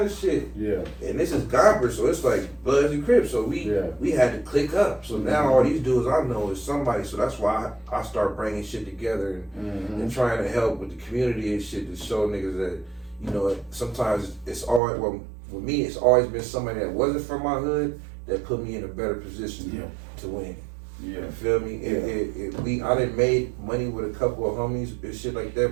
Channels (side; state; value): left; drops out; at 14.8 s